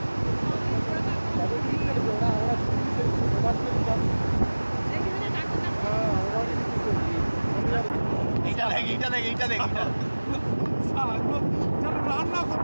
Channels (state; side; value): inverted; both; correlation -1.00